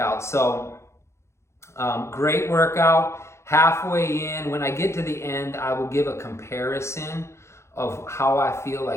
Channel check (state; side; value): late; right; 0.13 ms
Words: So great workout. Halfway in, when I get to the end, I will give a comparison of how I feel